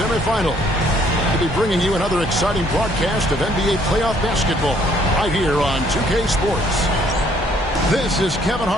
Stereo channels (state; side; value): normal; both; correlation 0.64